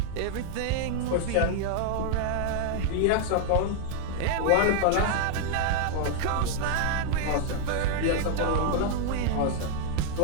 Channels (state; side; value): different; both; correlation -0.01